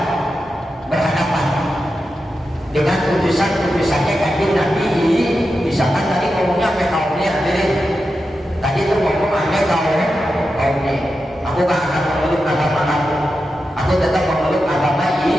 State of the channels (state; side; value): normal; both; correlation 0.90